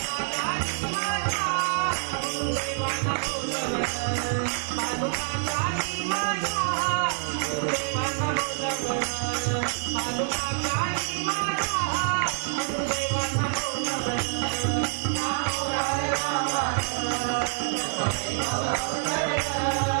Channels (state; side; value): silent; left; digital silence